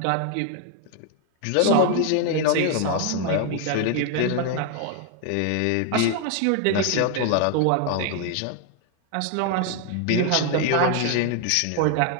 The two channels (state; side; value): different; both; correlation 0.00